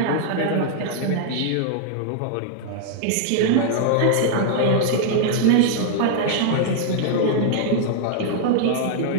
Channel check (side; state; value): both; different; correlation -0.01